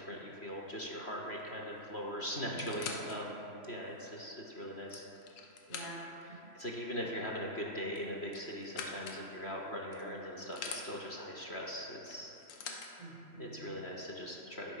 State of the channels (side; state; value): right; late; 3.0 ms